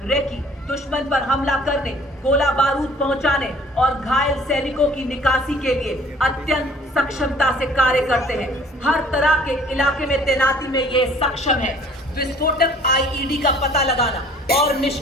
रेकी, दुश्मन पर हमला करने, गोला बारूद पहुंचाने और घायल सैनिकों की निकासी के लिए अत्यंत सक्षमता से कार्य करते हैं। हर तरह के इलाके में तैनाती में ये सक्षम है। विस्फोटक IED का पता लगाना और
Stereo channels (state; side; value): normal; both; correlation 0.53